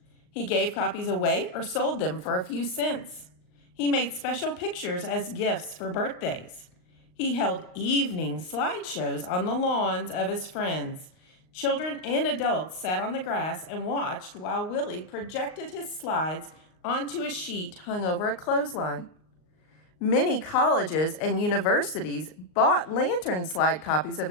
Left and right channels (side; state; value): right; late; 39 ms